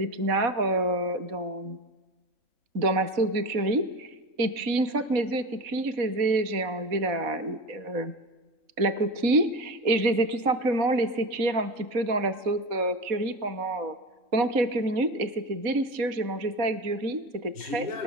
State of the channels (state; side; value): late; left; 4.1 ms